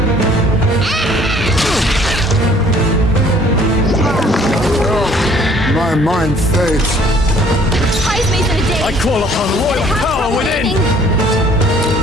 My mind fades. Heismay's in a daze. I call upon royal power within.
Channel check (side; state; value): both; normal; correlation 0.57